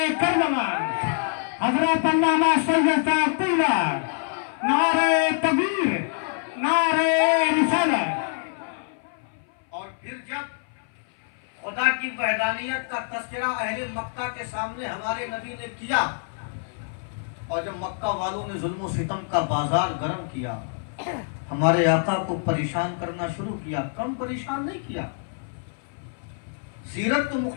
کربلا، حضرت علامہ سید صاحب اللہ، نعرہ تکبیر، نعرہ رسالت۔ اور پھر جب خدا کی وحدانیت کا تذکرہ اہل مکہ کے سامنے ہمارے نبی نے کیا، اور جب مکہ والوں نے ظلم و ستم کا بازار گرم کیا، ہمارے آقا کو پریشان کرنا شروع کیا، کم پریشان نہیں کیا۔ سیرت تو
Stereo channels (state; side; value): silent; right; 58 dB below the other